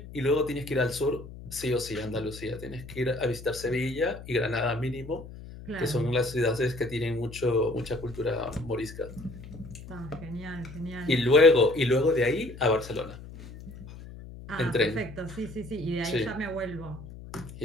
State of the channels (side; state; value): left; noise; hum, 14 dB below the sound